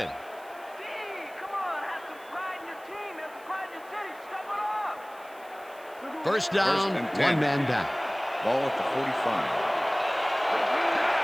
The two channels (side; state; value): right; noise; hiss, 25 dB below the sound